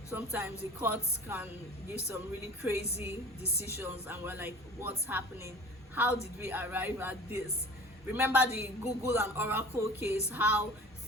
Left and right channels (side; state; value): both; normal; correlation 0.42